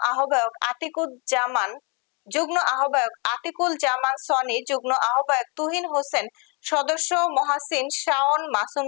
আহ্বায়ক আতিকুল জামান সনি, যুগ্ম আহ্বায়ক তুহিন হোসেন, সদস্য মহাসিন শাওন, মাসুম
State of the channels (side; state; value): right; quieter; 33.0 dB